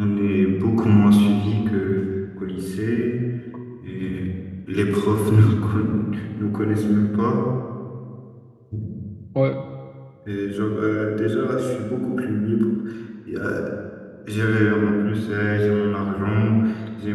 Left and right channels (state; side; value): identical; both; correlation 1.00